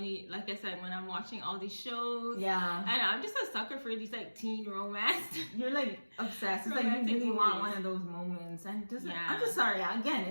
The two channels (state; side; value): inverted; both; correlation -1.00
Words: like I said, when I'm watching all these shows, and I'm just a sucker for these like teen romance. You're like obsessed. It's like you really want one of those moments, and just I'm just sorry. Again,